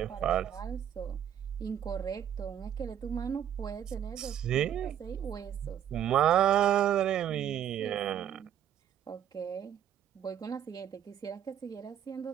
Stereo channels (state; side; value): quieter; left; 9.9 dB